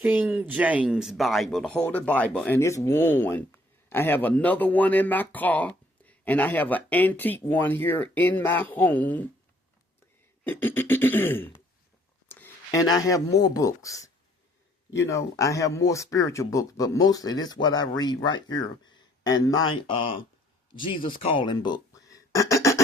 James Bible, the Holy Bible, and it's worn. I have another one in my car, and I have an antique one here in my home. And I have more books. You know, I have more spiritual books, but mostly this is what I read right here and my Jesus Calling book.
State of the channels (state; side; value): normal; both; correlation 0.62